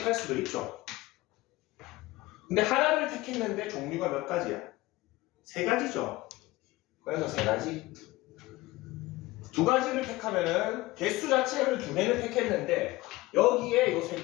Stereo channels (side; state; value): right; quieter; 19.4 dB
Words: 수도 있죠. 근데 하나를 택했는데 종류가 몇 가지야? 3가지죠. 그래서 3가지. 2가지를 택하면은 개수 자체를 2개를 택했는데 여기에 요